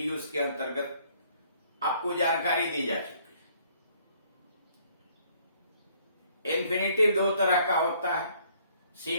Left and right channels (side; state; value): both; inverted; correlation -0.63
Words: के अंतर्गत आपको जानकारी दी जा चुकी है। इन्फिनेटिव दो तरह का होता है,